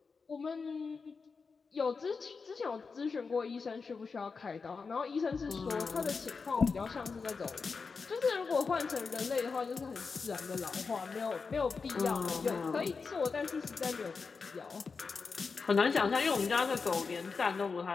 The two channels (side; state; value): right; quieter; 4.9 dB